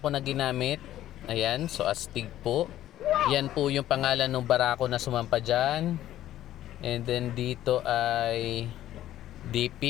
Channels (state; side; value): quieter; right; 13.0 dB